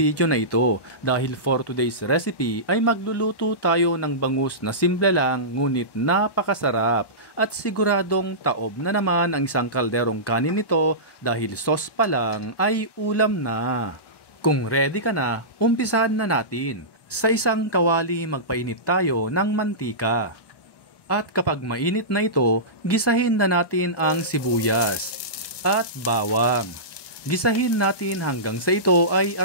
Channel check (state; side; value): late; right; 1.1 ms